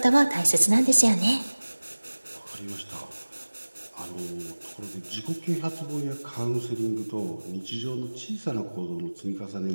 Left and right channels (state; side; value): inverted; both; correlation -1.00